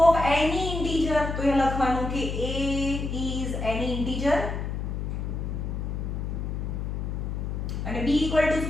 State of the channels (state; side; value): noise; left; hum, 3 dB below the sound